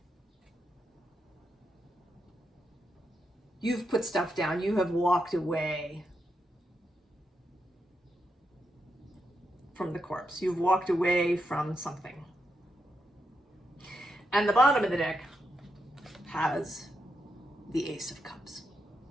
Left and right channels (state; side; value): normal; both; correlation 0.84